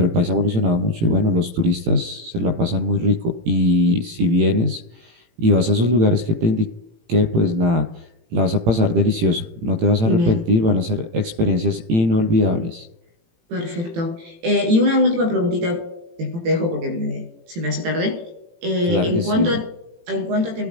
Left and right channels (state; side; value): late; left; 18 ms